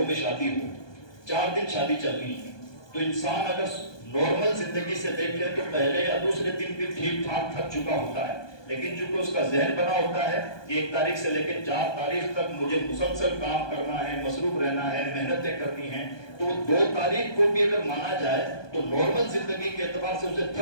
میں شادی ہو, 4 دن شادی چل رہی ہے, تو انسان اگر نارمل زندگی سے دیکھے تو پہلے یا دوسرے دن بھی ٹھیک ٹھاک تھک چکا ہوتا ہے, لیکن چونکہ اس کا ذہن بنا ہوتا ہے کہ 1 تاریخ سے لے کے 4 تاریخ تک مجھے مسلسل کام کرنا ہے, مصروف رہنا ہے, محنتیں کرنی ہیں, تو 2 تاریخ کو بھی اگر مانا جائے تو نارمل زندگی کے اعتبار سے اسے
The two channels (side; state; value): right; late; 1.2 ms